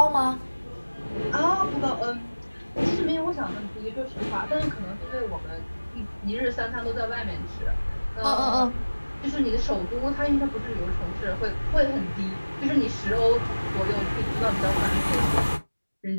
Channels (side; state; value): both; inverted; correlation -1.00